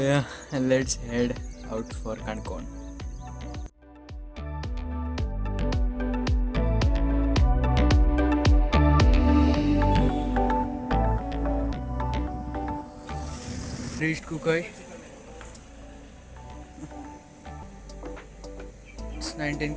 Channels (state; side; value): identical; both; correlation 1.00